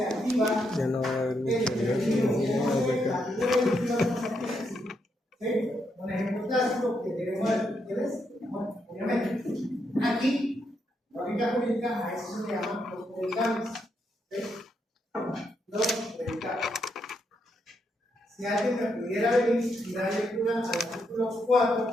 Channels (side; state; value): both; normal; correlation 0.79